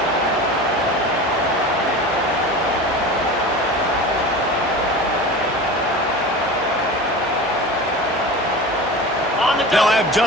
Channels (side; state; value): both; normal; correlation 0.32